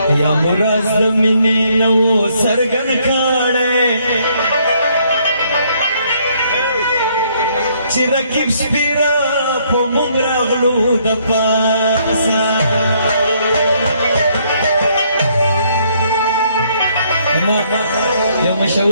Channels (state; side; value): inverted; both; correlation -0.68